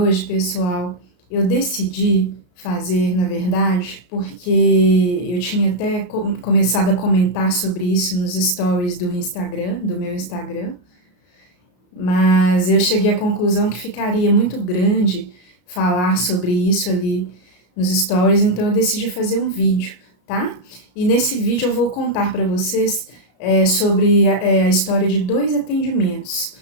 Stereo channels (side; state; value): right; late; 33 ms